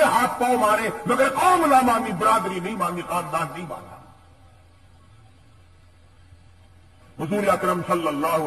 ہاتھ پاؤں مارے، مگر قوم نہ مانی، برادری نہیں مانی، خاندان نہیں مانا۔ حضور اکرم صلی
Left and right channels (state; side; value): identical; both; correlation 1.00